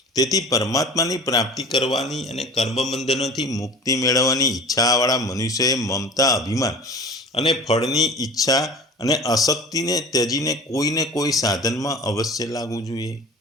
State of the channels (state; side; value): normal; both; correlation 0.38